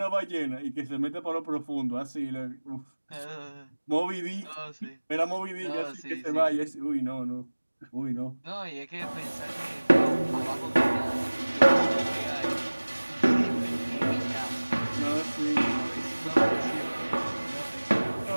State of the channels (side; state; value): both; inverted; correlation -1.00